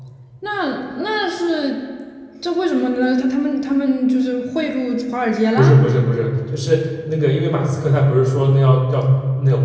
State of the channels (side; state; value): both; identical; correlation 1.00